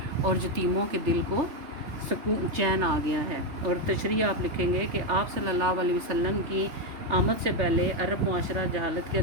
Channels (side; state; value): left; late; 3.3 ms